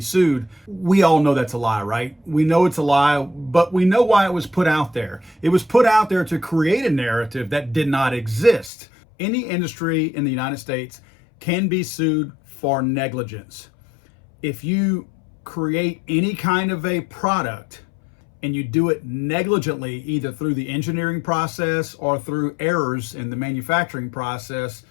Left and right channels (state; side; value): drops out; right; at 8.7 s